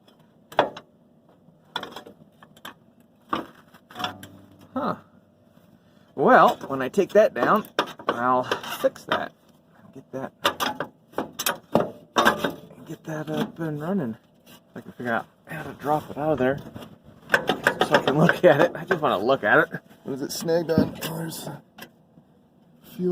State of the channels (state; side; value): identical; both; correlation 1.00